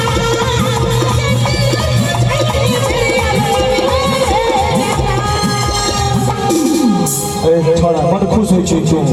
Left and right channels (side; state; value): both; identical; correlation 1.00